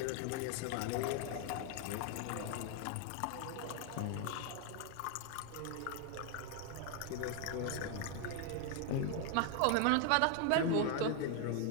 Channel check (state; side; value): different; both; correlation 0.01